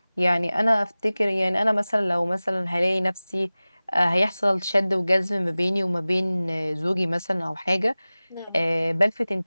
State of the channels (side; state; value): both; inverted; correlation -0.98